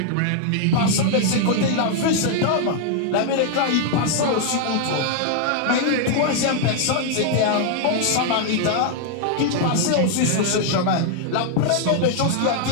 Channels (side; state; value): both; different; correlation 0.00